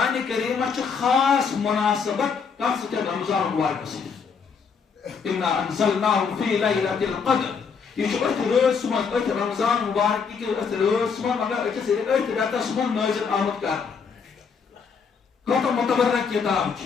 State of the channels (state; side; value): quieter; right; 5.9 dB